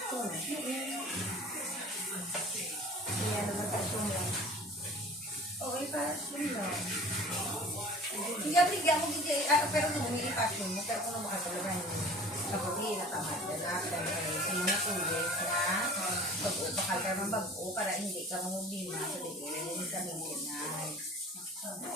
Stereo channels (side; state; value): both; normal; correlation 0.44